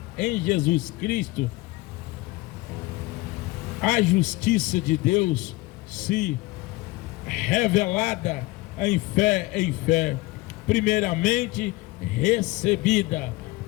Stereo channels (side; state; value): right; quieter; 21.3 dB